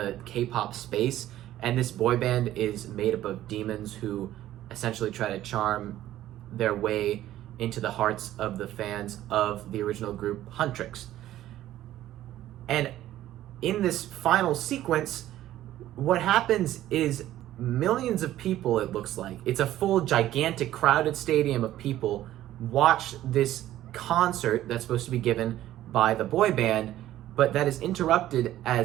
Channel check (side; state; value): left; quieter; 13.6 dB